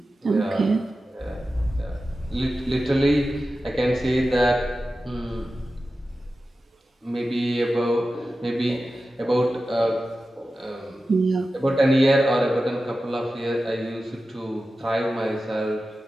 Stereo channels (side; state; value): both; normal; correlation 0.93